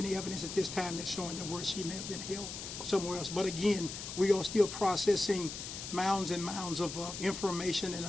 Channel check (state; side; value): noise; left; hiss, 8 dB below the sound